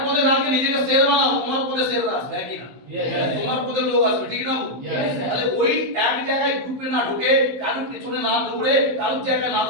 শের বানাও, তোমার পথে শের আসবে, কি না? তোমার পথে লোক আসবে, ঠিক না? তাহলে ওই এক জায়গায় গ্রুপে না ঢুকে, কারোর পেছনে না দৌড়ে, কারোর জায়গায় না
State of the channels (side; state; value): left; late; 15 ms